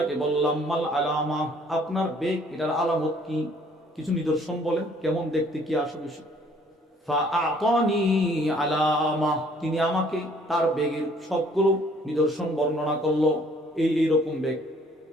বললাম, মাল আলামা, আপনার বেগ এটার আলামত কি, কিছু নিদর্শন বলেন, কেমন দেখতে, কি আসবে। ফাআতানি আলামা, তিনি আমাকে তার বেগের সবগুলো নিদর্শন বর্ণনা করলো। এইরকম বেগ।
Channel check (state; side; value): normal; both; correlation 0.60